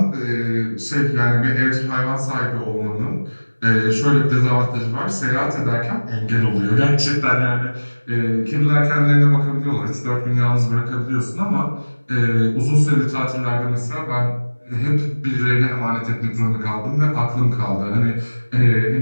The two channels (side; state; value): both; inverted; correlation -1.00